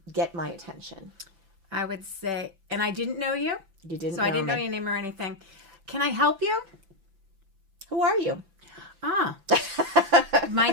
get my attention? I would say, and I didn't know you. You didn't. So I didn't know your name or anything. Can I help you? Who are you? My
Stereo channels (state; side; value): late; left; 5.9 ms